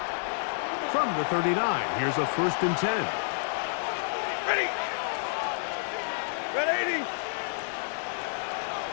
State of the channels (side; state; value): right; silent; 58 dB below the other